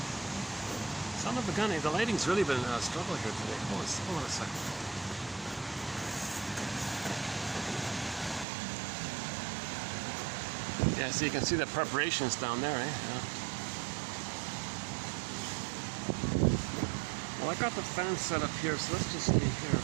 Son of a gun, the lighting's really been a struggle here today. Hold on a second. Yeah, so you can see the preparations down there, eh? Yeah. Well, I got the fan set up here, so let's just stay here.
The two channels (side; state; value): left; drops out; at 8.5 s